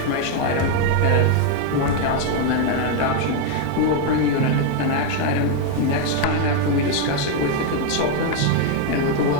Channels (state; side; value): different; both; correlation 0.01